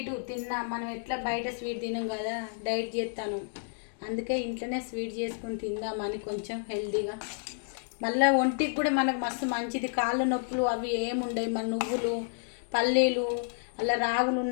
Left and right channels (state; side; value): silent; right; digital silence